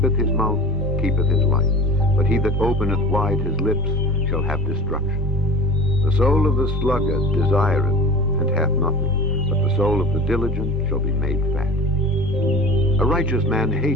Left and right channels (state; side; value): normal; both; correlation 0.37